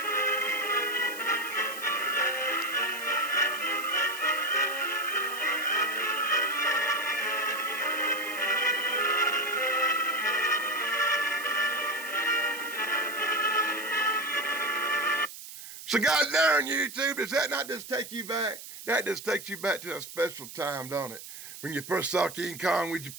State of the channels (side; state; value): right; noise; hiss, 13 dB below the sound